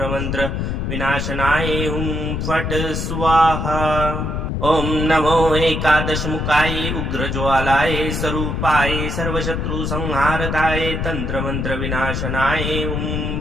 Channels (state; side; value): noise; left; rumble, 2 dB below the sound